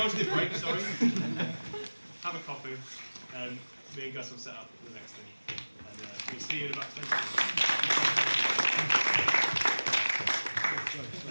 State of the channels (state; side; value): inverted; both; correlation -1.00